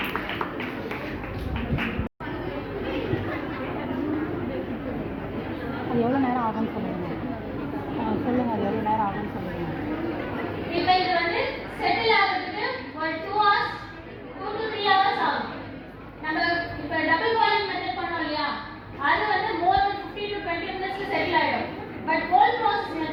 அது எவ்வளோ நேரம் ஆகும்னு சொல்லுங்கள். சொல்லுங்கள், அது எவ்வளோ நேரம் ஆகும்னு சொல்லுங்கள். இப்போ இது வந்து செட்டில் ஆகிறதுக்கு ஒரு 2 hours 2 to 3 hours ஆகும். நம்ம இப்போ டபுள் பாயிலிங் மெத்தட் பண்ணோம் இல்லையா, அது வந்து more than 15 to 20 minutes settle ஆகிடும். பட் கோல்ட் ப்ராசஸ்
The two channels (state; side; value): identical; both; correlation 1.00